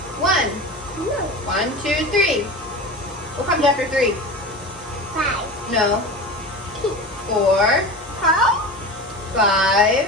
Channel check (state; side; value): normal; both; correlation 0.31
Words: one. No. 1, 2, 3. What comes after 3? 5. No. 4, 5.